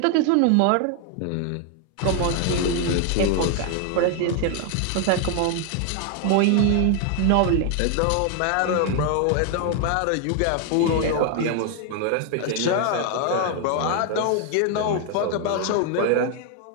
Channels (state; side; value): different; both; correlation 0.00